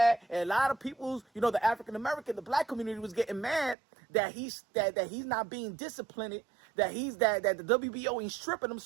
and a lot of people, you know, the African American, the black community was getting mad that he's not being disciplined, that the WBO ain't stripping him.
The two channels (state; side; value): drops out; left; at 3.8 s